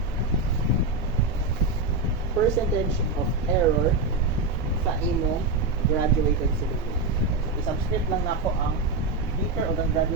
of error sa imo graduated cylinder. I-subscript lang nako ang beaker o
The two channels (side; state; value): left; quieter; 3.4 dB